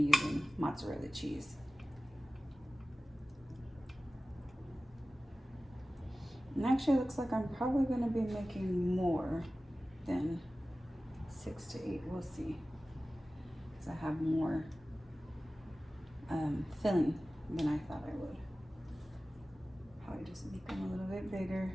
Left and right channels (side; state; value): both; normal; correlation 0.96